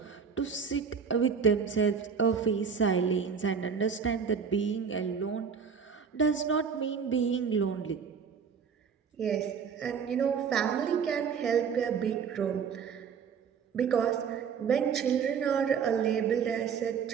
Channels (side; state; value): left; quieter; 6.5 dB